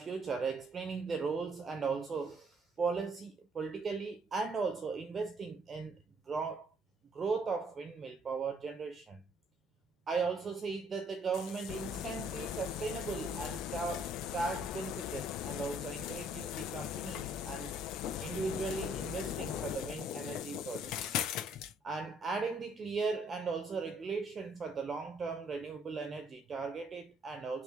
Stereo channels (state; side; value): normal; both; correlation 0.65